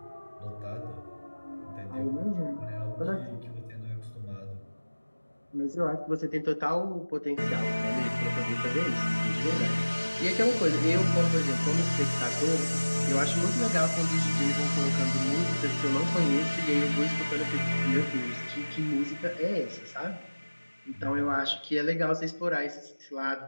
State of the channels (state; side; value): inverted; both; correlation -1.00